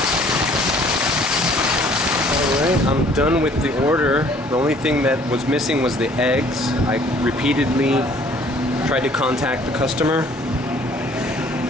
I'm done with the order. The only thing that was missing was the eggs. I repeatedly tried to contact the customer.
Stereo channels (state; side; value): normal; both; correlation 0.56